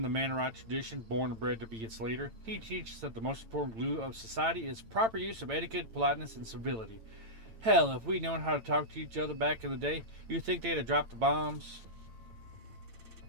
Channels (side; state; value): left; late; 8.9 ms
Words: the Mannerite tradition, born and bred to be its leader. He teaches that the most important glue of society is proper use of etiquette, politeness, and civility. Hell, if we'd known how to talk to each other back in the day, you'd think they'd have dropped the bombs.